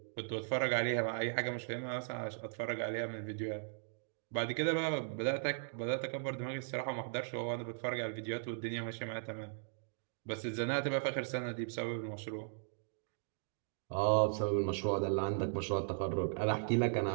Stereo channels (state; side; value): silent; left; digital silence